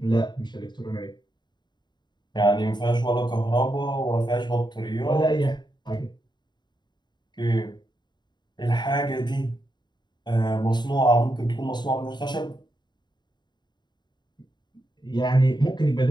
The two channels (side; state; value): right; late; 0.21 ms